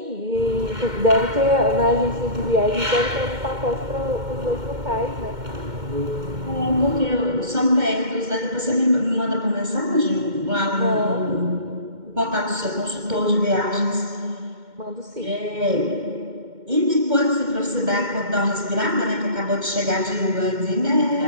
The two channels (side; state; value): left; late; 2.1 ms